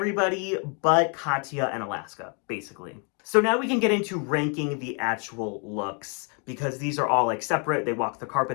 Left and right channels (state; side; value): quieter; right; 37.2 dB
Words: but Katya and Alaska, basically. So now we can get into ranking the actual looks because these are all like separate. They walk the